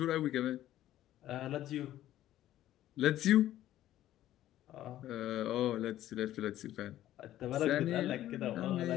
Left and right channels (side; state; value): right; quieter; 13.4 dB